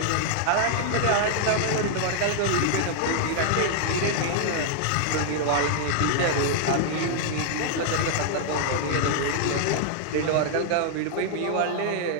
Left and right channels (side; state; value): both; different; correlation -0.01